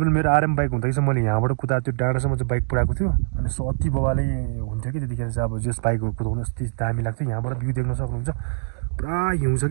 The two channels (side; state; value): left; silent; digital silence